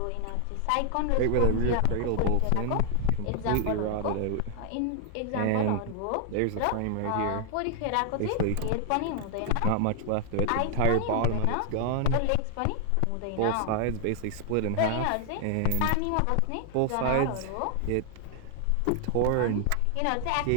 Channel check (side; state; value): both; different; correlation 0.00